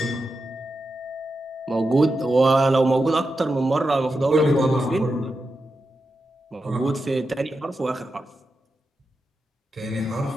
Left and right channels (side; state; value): both; normal; correlation 0.89